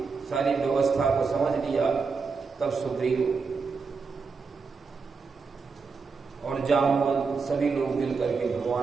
सारी व्यवस्था को समझ लिया, तब सुग्रीव और जामवंत सभी लोग मिल करके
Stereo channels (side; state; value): left; quieter; 4.9 dB